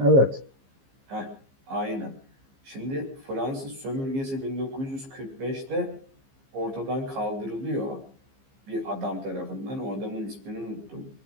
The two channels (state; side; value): late; left; 15 ms